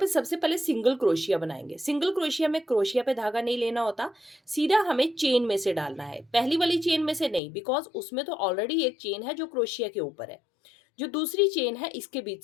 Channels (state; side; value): drops out; right; at 7.4 s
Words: सबसे पहले सिंगल क्रोशिया बनाएंगे। सिंगल क्रोशिया में क्रोशिया पे धागा नहीं लेना होता, सीधा हमें चेन में से डालना है। पहली वाली चेन में से नहीं, बिकॉज उसमें तो ऑलरेडी एक चेन है जो क्रोशिया के ऊपर है। जो दूसरी चेन है इसके बीच